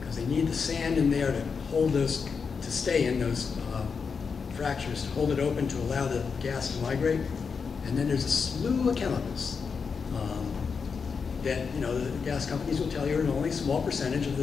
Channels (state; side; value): quieter; right; 5.6 dB